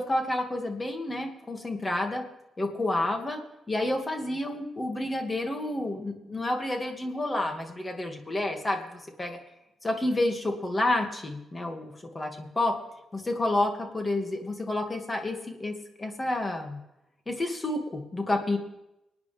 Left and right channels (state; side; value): normal; both; correlation 0.89